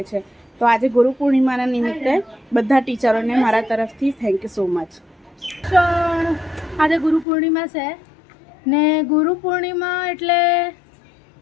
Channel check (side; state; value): right; drops out; at 7.2 s